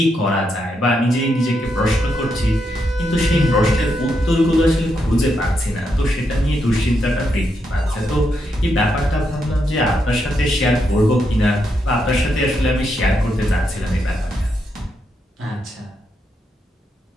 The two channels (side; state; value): both; normal; correlation 0.81